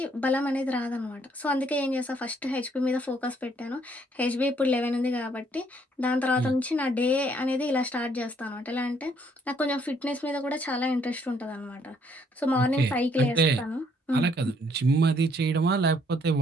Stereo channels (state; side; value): normal; both; correlation 0.66